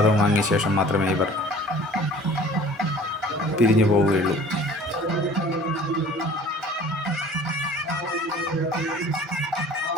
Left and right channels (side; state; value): both; normal; correlation 0.48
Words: വാങ്ങിയ ശേഷം മാത്രമേ ഇവർ പിരിഞ്ഞു പോവുകയുള്ളൂ.